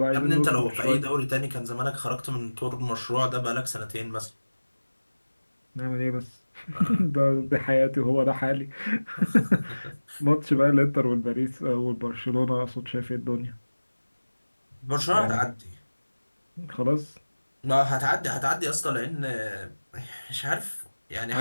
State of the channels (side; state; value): both; inverted; correlation -1.00